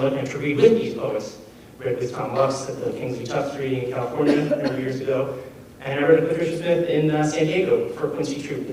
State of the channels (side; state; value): both; identical; correlation 1.00